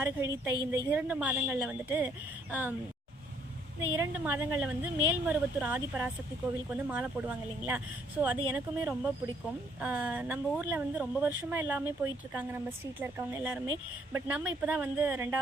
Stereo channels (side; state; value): both; normal; correlation 0.67